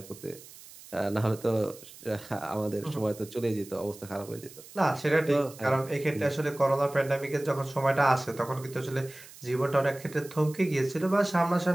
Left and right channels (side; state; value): right; noise; hiss, 19 dB below the sound